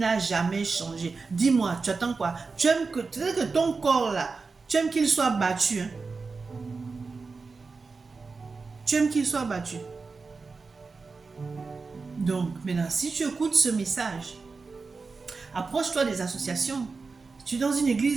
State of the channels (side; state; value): left; quieter; 4.4 dB